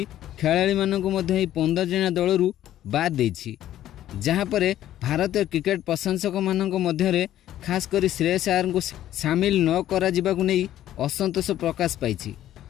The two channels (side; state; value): right; quieter; 12.6 dB